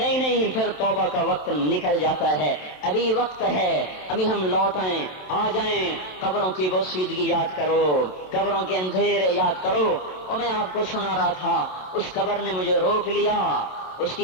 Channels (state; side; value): late; right; 27 ms